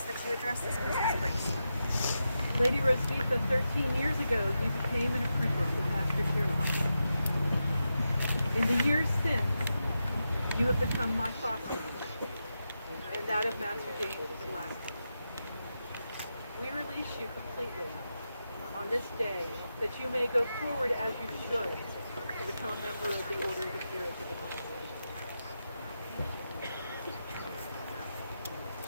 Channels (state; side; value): inverted; both; correlation -0.88